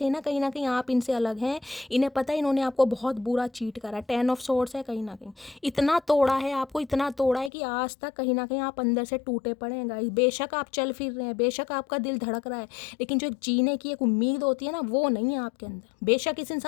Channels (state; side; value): drops out; right; at 7.5 s